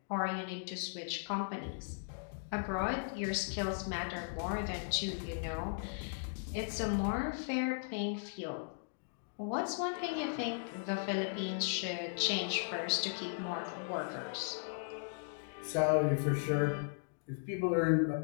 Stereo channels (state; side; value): silent; right; digital silence